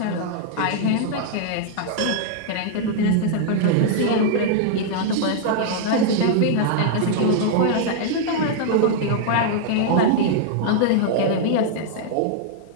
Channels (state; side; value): different; both; correlation -0.01